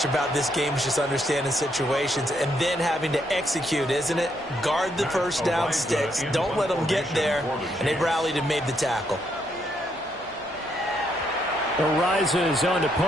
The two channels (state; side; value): noise; left; hum, 29 dB below the sound